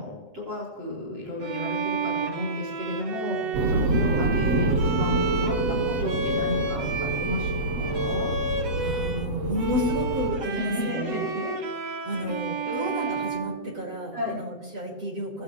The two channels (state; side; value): late; left; 7.8 ms